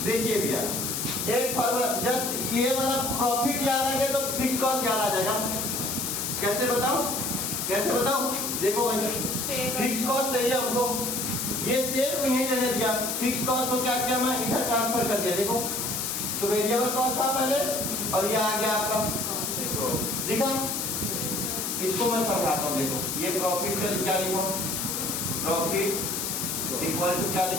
देखिए भैया एक फॉर्मूला, जस्ट ये वाला प्रॉफिट याद आ गया तो फिक्स कॉस्ट याद आ जाएगा। कैसे बताऊं, कैसे बताऊं, देखो फिक्स कॉस्ट चाहिए हमको, ये सेल को यहीं रहने दिया, फिक्स कॉस्ट को क्या किया मैं इधर ट्रांसफर कर दिया। देखो तो वेरिएबल कॉस्ट था पहले और ये आ गया आपका, दिखा? इसको मैं समझाता हूँ। देखो ये प्रॉफिट का क्या लिखो, प्रॉफिट इक्वल टू क्या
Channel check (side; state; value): left; noise; hiss, 2 dB below the sound